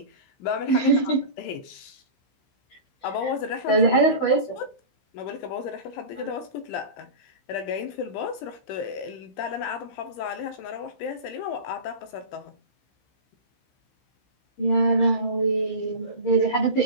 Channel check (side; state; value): right; late; 15 ms